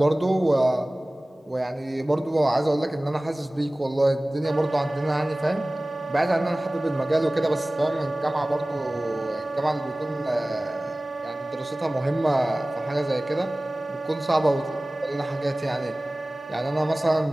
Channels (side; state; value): both; normal; correlation 0.98